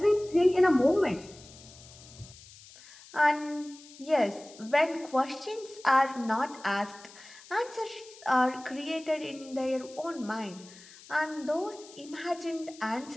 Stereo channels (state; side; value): noise; left; hiss, 20 dB below the sound